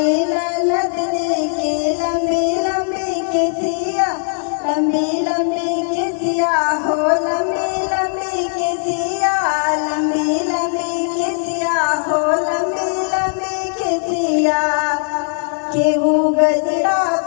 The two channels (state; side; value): silent; right; 67 dB below the other